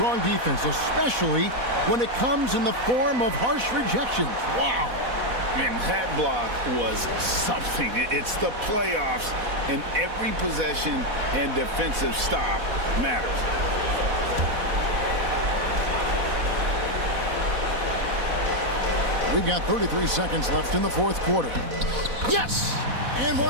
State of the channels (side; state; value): left; late; 4.1 ms